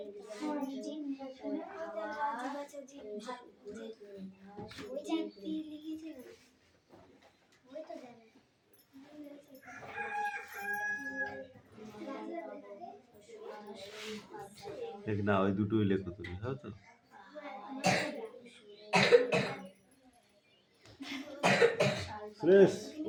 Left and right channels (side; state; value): both; identical; correlation 1.00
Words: মেঘনা ওই দুটোই লেখো তুমি, হ্যাঁ তো? সুরেশ